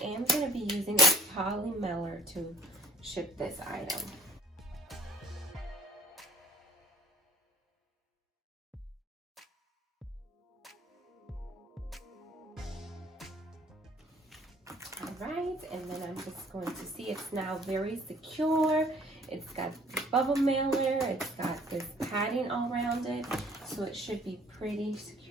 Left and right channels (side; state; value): both; normal; correlation 0.55